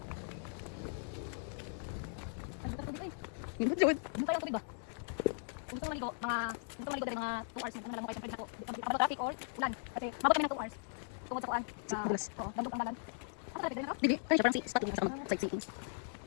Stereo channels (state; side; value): silent; right; digital silence